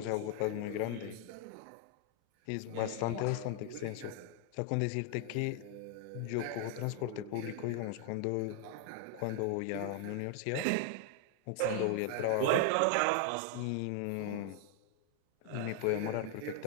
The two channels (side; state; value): both; different; correlation 0.00